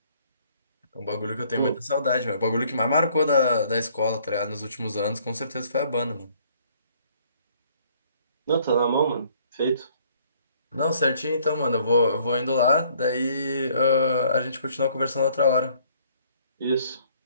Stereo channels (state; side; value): inverted; both; correlation -0.62